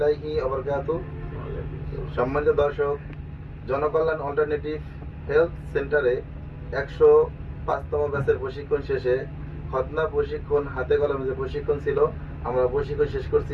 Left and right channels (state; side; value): identical; both; correlation 1.00